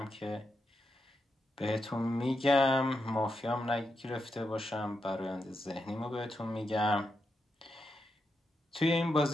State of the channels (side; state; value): both; normal; correlation 0.85